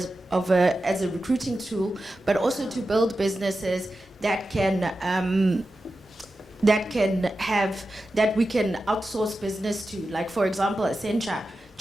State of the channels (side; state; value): both; normal; correlation 0.92